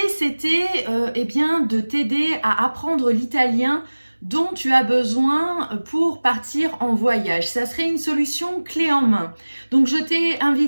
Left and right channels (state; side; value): inverted; both; correlation -1.00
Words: c'était de t'aider à apprendre l'italien dont tu as besoin pour partir en voyage. Ça serait une solution clé en main. Donc je t'ai